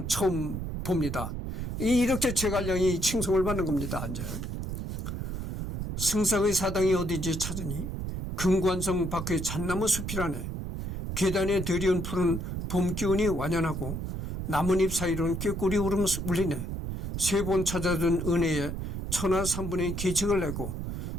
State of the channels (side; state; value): right; noise; rumble, 4 dB below the sound